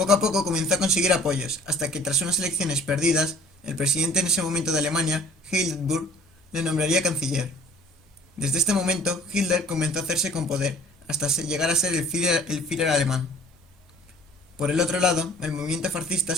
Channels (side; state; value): both; normal; correlation 0.52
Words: a poco comenzó a conseguir apoyos, hasta que tras unas elecciones perdidas, el presidente en ese momento de Alemania, Hindenburg, le nombraría canciller. Desde este momento, Hitler comenzó a hacerse con poder, hasta llegar a ser el Führer alemán. Por el otro lado, el movimiento fascista